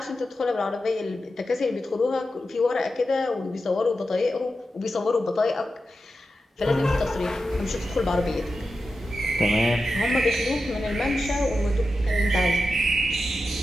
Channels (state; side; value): normal; both; correlation 0.90